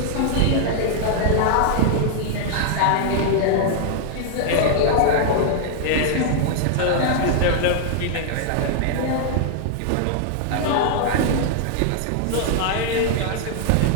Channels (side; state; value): both; different; correlation 0.00